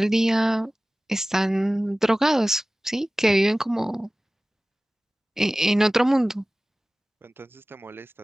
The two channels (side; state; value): both; normal; correlation 0.97